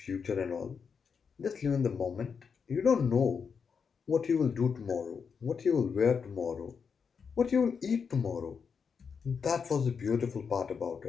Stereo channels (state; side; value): quieter; right; 6.1 dB